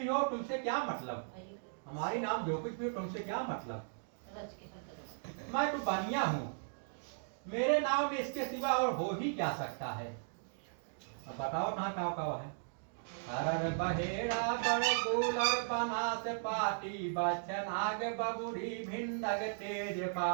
हो तुमसे क्या मतलब? हमारी नाम जो कुछ भी हो तुमसे क्या मतलब? मैं तो बनिया हूँ, मेरे नाम में इसके सिवा और हो ही क्या सकता है? अब बताओ कहाँ काव है? हरर बहेड़ा बड़ गुलर बनास पाती बच्चन आग बबुरी भिंडग तेज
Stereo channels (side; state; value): left; silent; digital silence